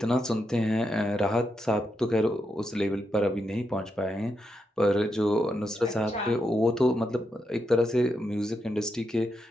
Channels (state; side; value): normal; both; correlation 0.84